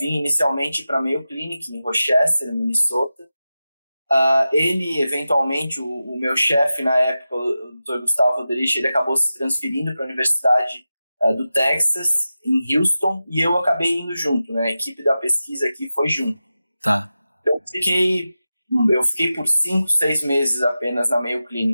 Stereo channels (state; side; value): inverted; both; correlation -0.93